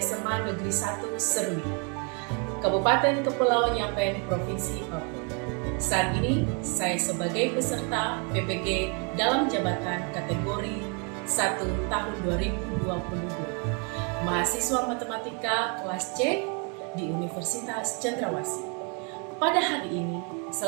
Negeri 1 Serui, Kabupaten Kepulauan Yapen, Provinsi Papua. Saat ini, saya sebagai peserta PPG dalam jabatan kategori 1 tahun 2022, mahasiswa matematika kelas C di Universitas Cendrawasih. Pada hari ini,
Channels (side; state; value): left; quieter; 36.0 dB